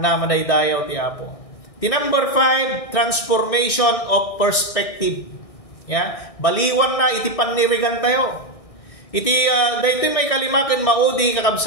madaydayaw ti Apo. Ti number 5, transformation of perspective. Ya, baliwan na iti panirigan tayo. Iti daytoy may kalimaken maudi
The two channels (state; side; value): late; right; 1.6 ms